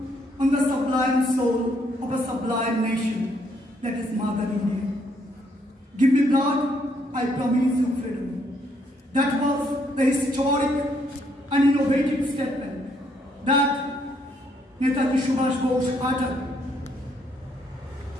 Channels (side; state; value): both; normal; correlation 0.71